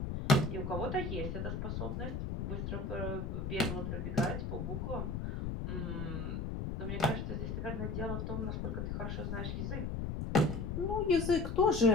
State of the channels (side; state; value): left; noise; rumble, 3 dB below the sound